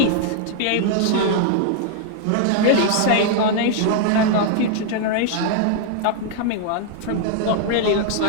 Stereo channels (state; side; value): different; both; correlation 0.00